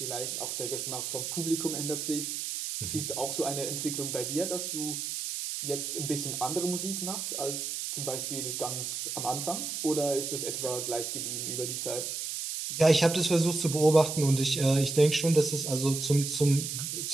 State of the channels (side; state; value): right; noise; hiss, 4 dB below the sound